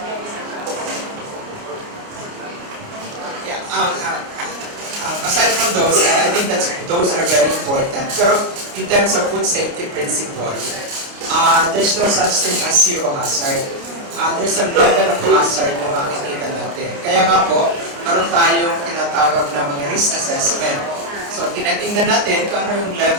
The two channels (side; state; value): left; late; 29 ms